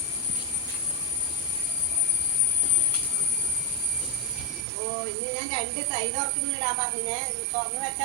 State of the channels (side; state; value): left; drops out; at 4.7 s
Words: ഇനി ഞാൻ 2 തൈ തുറക്കുന്നിടാൻ പറഞ്ഞേ. തുറന്നു